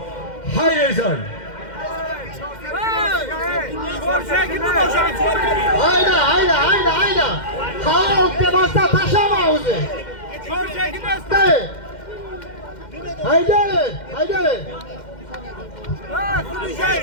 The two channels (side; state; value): right; late; 2.1 ms